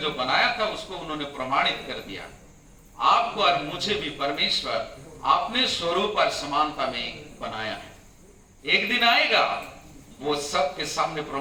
जो बनाया था उसको उन्होंने प्रमाणित कर दिया। आपको और मुझे भी परमेश्वर अपने स्वरूप और समानता में बनाया है। एक दिन आएगा, वो सबके सामने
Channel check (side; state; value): both; identical; correlation 1.00